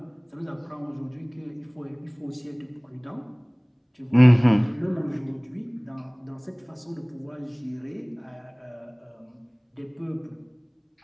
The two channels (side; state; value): both; identical; correlation 1.00